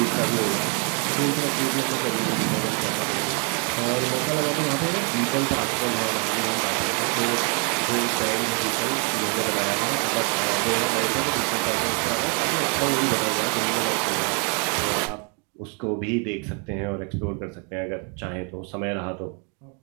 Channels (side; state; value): left; quieter; 37.6 dB